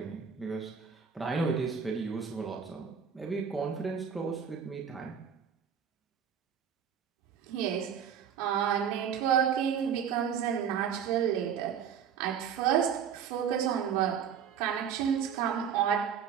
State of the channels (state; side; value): quieter; left; 7.7 dB